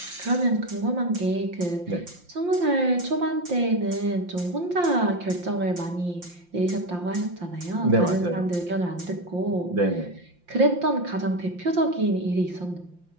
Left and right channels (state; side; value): late; left; 5.7 ms